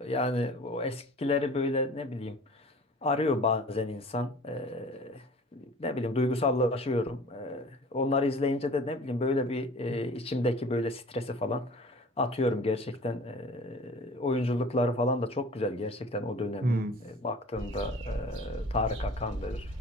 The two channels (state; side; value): normal; both; correlation 0.44